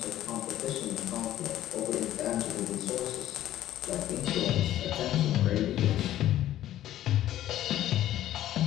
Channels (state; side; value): quieter; right; 13.0 dB